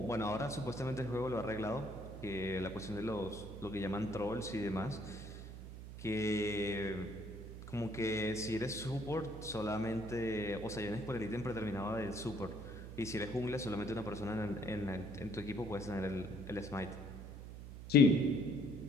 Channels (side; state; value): right; noise; hum, 11 dB below the sound